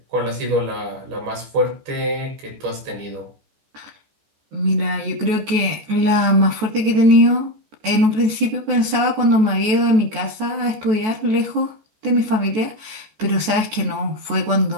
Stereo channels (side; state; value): left; late; 14 ms